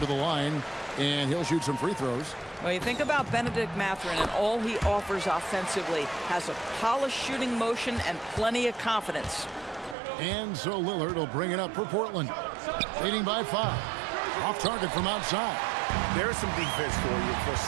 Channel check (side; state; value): left; drops out; at 10.0 s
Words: the line, and he'll shoot some free throws. Well, you think about Benedict Mathurin and all he offers offensively. Has a polished shooting motion and plenty of confidence. And so Lillard will bring it up for Portland. Leading by 5. Off target from outside. There's some defense for you. For